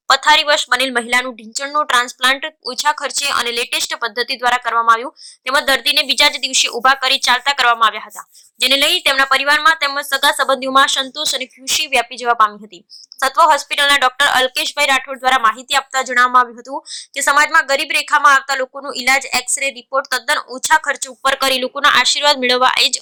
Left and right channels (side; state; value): both; identical; correlation 1.00